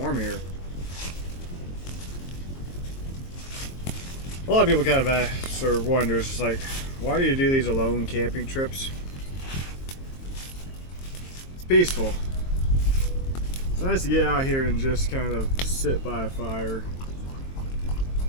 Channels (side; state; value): right; late; 22 ms